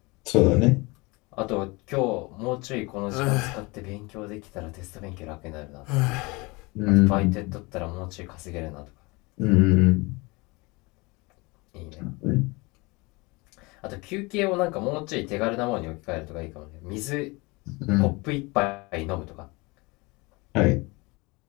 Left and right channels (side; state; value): right; quieter; 25.4 dB